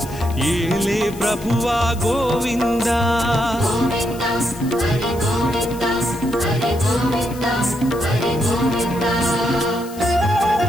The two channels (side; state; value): left; noise; hiss, 18 dB below the sound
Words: ఏలే ప్రభువా గోవింద गोविंद हरि गोविंद हरि गोविंद हरि गोविंद